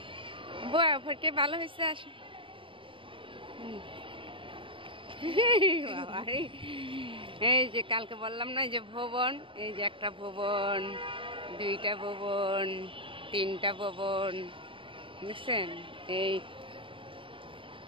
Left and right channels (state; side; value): late; left; 0.25 ms